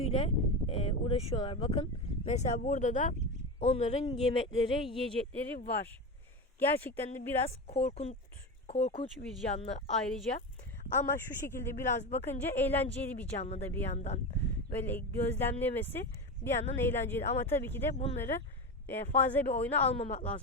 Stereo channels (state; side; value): normal; both; correlation 0.20